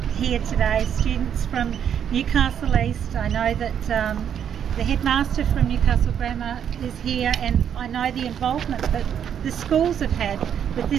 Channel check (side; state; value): left; quieter; 8.7 dB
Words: here today students from Newcastle East. I know that the headmaster from Newcastle Grammar is here, and I know the involvement that the schools have had with